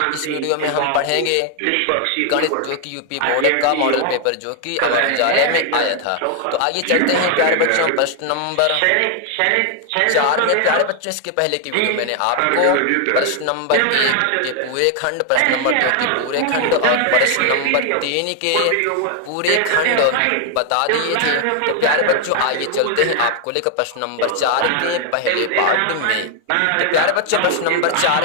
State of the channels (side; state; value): both; different; correlation 0.00